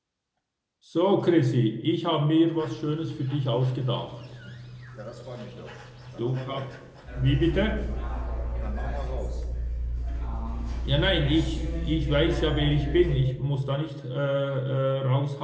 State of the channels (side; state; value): both; identical; correlation 1.00